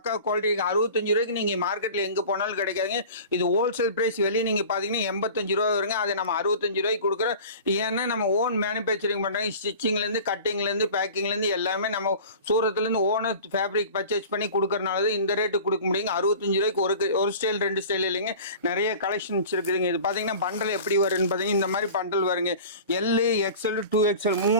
குவாலிட்டி இருக்கு. 65 ரூபாய்க்கு நீங்க மார்க்கெட்ல எங்க போனாலும் கிடைக்காதுங்க. இது ஹோல்சேல் பிரைஸ். வெளியே நீங்க பாத்தீங்கன்னா 85 ரூபா வருங்க. அதை நம்ம 65 ரூபாய்க்கு கொடுக்குறோம். ஏன்னா நம்ம ஓன் மேனுபேக்சரிங் பண்றாங்க. ஸ்டிச்சிங்ல இருந்து, கட்டிங்ல இருந்து, பேக்கிங்ல இருந்து எல்லாமே நம்ம சூரத்துல இருந்து ஓனர் ஃபேப்ரிக் பர்ச்சேஸ் பண்ணி கொடுக்கறனால இந்த ரேட்டு கொடுக்க முடியுங்க. 65 ரூபாய்க்கு ஒரு ஸ்டைல் 2 ஸ்டைல் இல்லைங்க. நிறைய கலெக்ஷன்ஸ் இருக்குதுங்க. இது பாத்தீங்கன்னா பண்டல் எப்படி வரும்னு பாத்தீங்கன்னா இந்த மாதிரி பண்டல் வருங்க. எல்இ எக்ஸ்எல் 2XL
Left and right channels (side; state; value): both; inverted; correlation -0.40